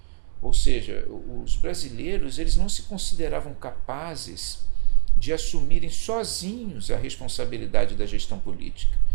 Ou seja, os brasileiros eles não se consideravam capazes de assumirem sozinhos a responsabilidade da gestão política.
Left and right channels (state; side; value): silent; left; digital silence